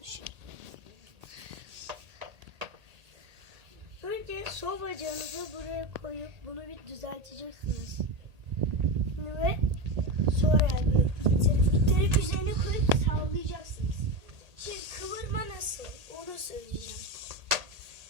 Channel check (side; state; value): left; late; 1.8 ms